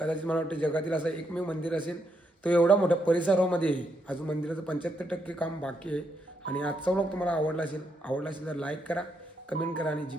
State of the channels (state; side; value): normal; both; correlation 0.78